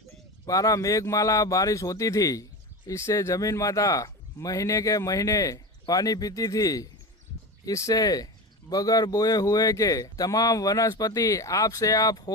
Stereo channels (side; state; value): both; normal; correlation 0.25